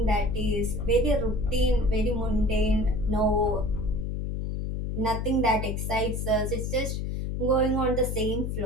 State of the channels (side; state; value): left; noise; hum, 2 dB below the sound